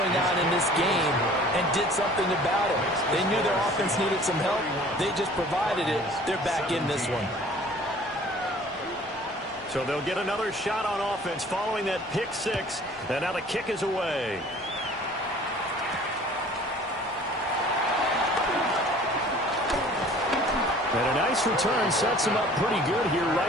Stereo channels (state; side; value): normal; both; correlation 0.50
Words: on in this game and did something about it. They knew their offense needed some help. They just provided it. They're back in this one. So they'll get another shot on offense following that pick 6. And now the kick is away. And a nice return sets them up pretty good here